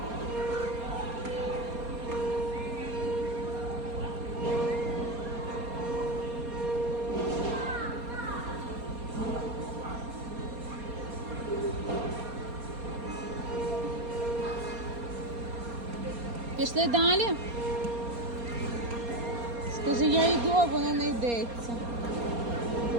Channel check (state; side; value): late; left; 4.3 ms